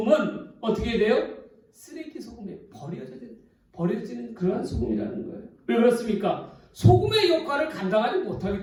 어떻게 돼요? 쓰레기 소금에 버려지는 그러한 소금이라는 거예요. 왜 그렇습니까? 소금의 역할을 감당하지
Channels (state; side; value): identical; both; correlation 1.00